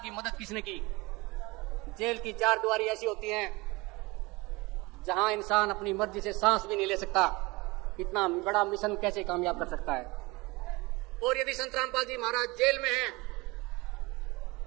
मदद किसने की? जेल की चार दीवारी ऐसी होती हैं जहां इंसान अपनी मर्जी से सांस भी नहीं ले सकता। इतना बड़ा मिशन कैसे कामयाब कर सकता है? और यदि संत रामपाल जी महाराज जेल में हैं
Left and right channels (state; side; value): quieter; left; 23.9 dB